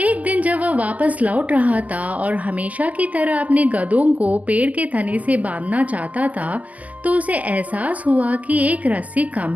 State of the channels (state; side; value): late; left; 0.071 ms